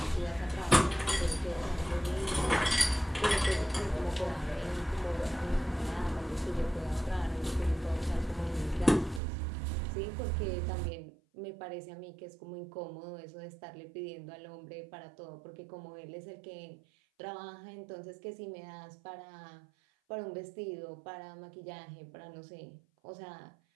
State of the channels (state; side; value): drops out; left; at 9.2 s